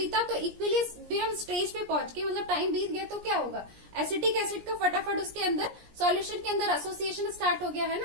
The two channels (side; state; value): left; late; 17 ms